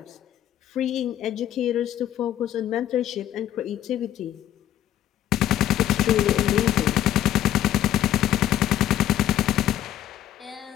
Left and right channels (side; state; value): right; quieter; 12.1 dB